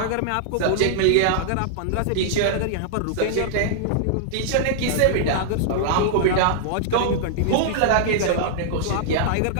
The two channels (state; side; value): different; both; correlation -0.01